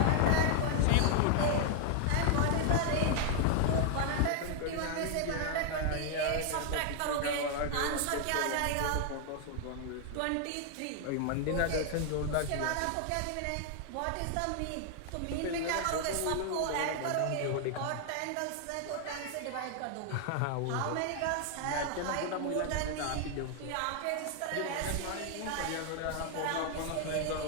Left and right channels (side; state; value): both; different; correlation 0.00